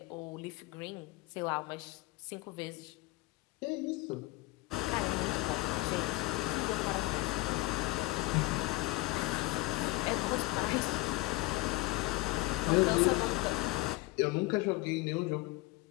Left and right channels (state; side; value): quieter; right; 20.7 dB